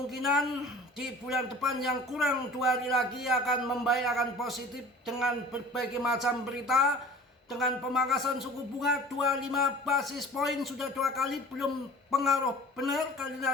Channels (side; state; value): both; normal; correlation 0.44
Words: di bulan depan yang kurang 2 hari lagi akan membaik, akan positif dengan berbagai macam berita. Dengan pemangkasan suku bunga 25 basis poin sudah 2 kali, belum pengaruh benar. Kalian